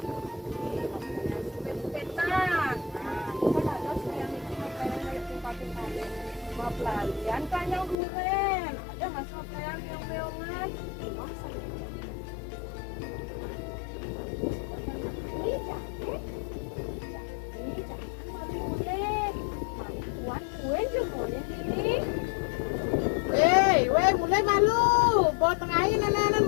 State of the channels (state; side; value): drops out; right; at 8.0 s